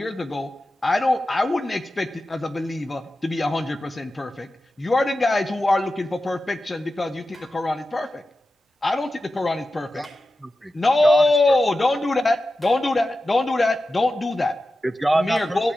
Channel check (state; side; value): normal; both; correlation 0.93